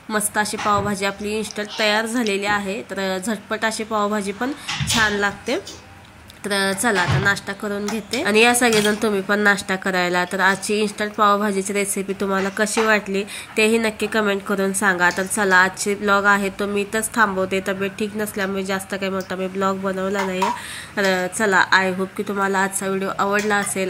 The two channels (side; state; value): both; identical; correlation 1.00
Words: मस्त अशी पावभाजी आपली इन्स्टंट तयार झालेली आहे। तर झटपट अशी पावभाजी पण छान लागते। तर चला आता नाश्ता करून घेते आणि या सगळेजण तुम्ही पण नाश्ता करायला। तर आजची इन्स्टंट पावभाजीची रेसिपी तुम्हाला कशी वाटली तेही नक्की कमेंट करून सांगा। तर चला आजची ब्लॉग आहे तो मी इथंच थांबवते, तब्येत ठीक नसल्यामुळे जास्त काही मोठा मी ब्लॉग बनवला नाही। तर चला आय होप की तुम्हाला आजचा व्हिडिओ आवडला